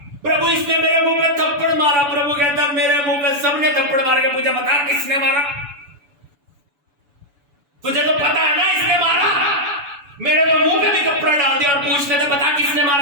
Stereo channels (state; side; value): late; left; 7.0 ms